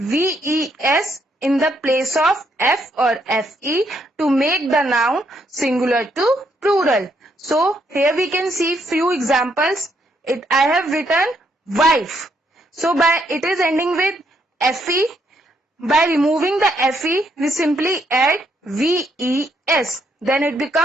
in the place of F or FE to make the noun singular to plural. So here we can see few examples. I have written wife. So it is ending with FE. By removing the FE, we simply add VES. Then it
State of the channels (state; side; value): normal; both; correlation 0.74